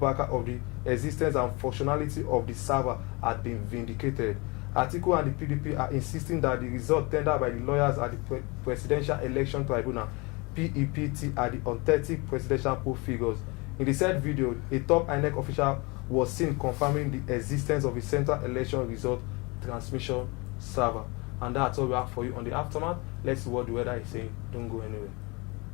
of the existence and functionality of the server had been vindicated. Atiku and the PDP are insisting that the result tendered by the lawyers at the Presidential Election Tribunal (PEPT) are the authentic presidential poll figures. In the said video, a top INEC official was seen confirming the existence of a central election result transmission server. And that's all we have for you on the aftermath. Let's see what the weather is saying. Don't go anywhere.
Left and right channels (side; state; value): right; quieter; 27.3 dB